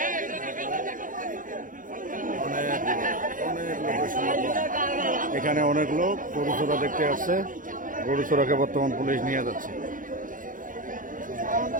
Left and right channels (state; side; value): late; left; 0.39 ms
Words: এখানে অনেক লোক গরু চোরা দেখতে আসছে। গরু চোরাকে বর্তমান পুলিশ নিয়ে যাচ্ছে।